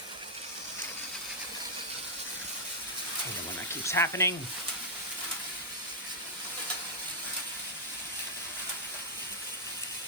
When that keeps happening.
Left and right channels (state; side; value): normal; both; correlation -0.06